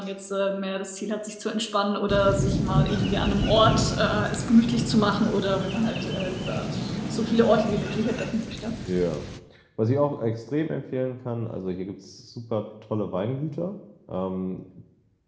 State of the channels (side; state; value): both; identical; correlation 1.00